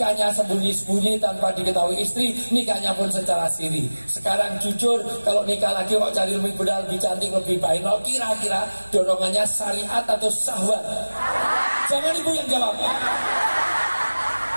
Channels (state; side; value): inverted; both; correlation -1.00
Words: sembunyi-sembunyi tanpa diketahui istri, nikahnya pun secara siri. Sekarang jujur, kalau nikah lagi kok cari lebih muda, lebih cantik, lebih bainol, kira-kira dorongannya syariat atau syahwat? Jangan ibu yang jawab.